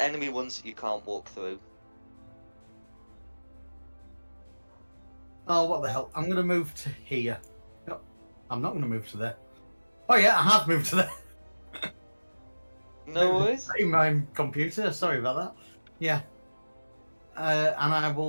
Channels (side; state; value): both; inverted; correlation -1.00